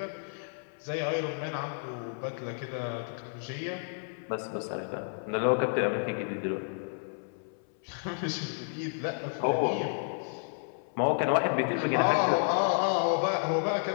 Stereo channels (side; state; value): right; silent; 57 dB below the other